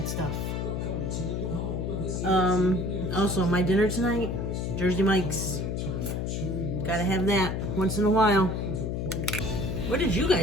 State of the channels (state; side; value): noise; left; hum, 2 dB below the sound